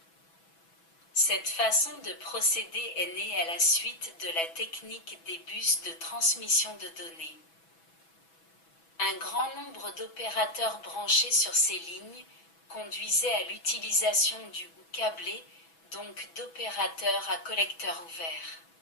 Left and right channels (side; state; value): right; late; 6.1 ms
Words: Cette façon de procéder est née à la suite de la technique des bus de transmission de données. Un grand nombre d'opérateurs branchés sur ces lignes conduisait à l'utilisation du ou câblé, donc d'opérateurs à collecteur ouvert.